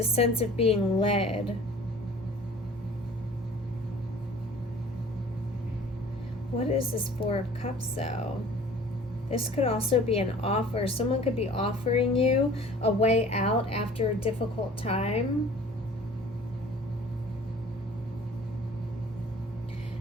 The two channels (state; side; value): normal; both; correlation 0.47